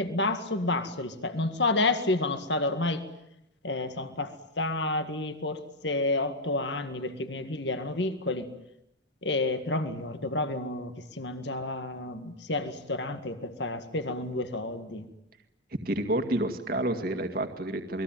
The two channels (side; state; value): both; normal; correlation 0.01